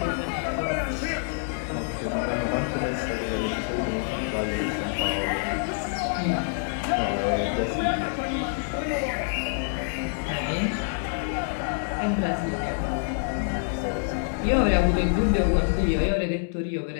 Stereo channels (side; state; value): right; silent; digital silence